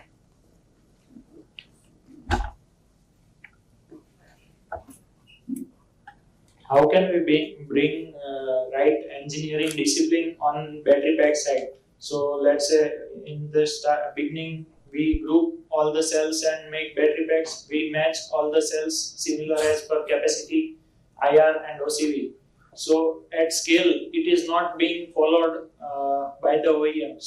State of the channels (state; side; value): identical; both; correlation 1.00